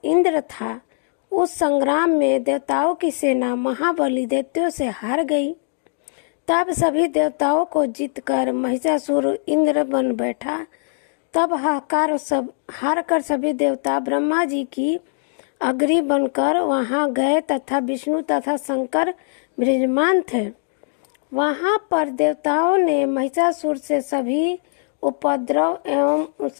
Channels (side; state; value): right; silent; digital silence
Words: इंद्र था। उस संग्राम में देवताओं की सेना महाबली दैत्यों से हार गई। तब सभी देवताओं को जीतकर महिषासुर इंद्र बन बैठा। तब हार कर सभी देवता ब्रह्मा जी की अग्नि बनकर वहां गए तथा विष्णु तथा शंकर विराजमान थे। वहां पर देवताओं ने महिषासुर से सभी उपद्रव एवं